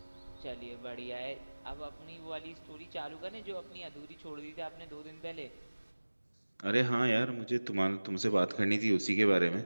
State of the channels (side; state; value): both; inverted; correlation -1.00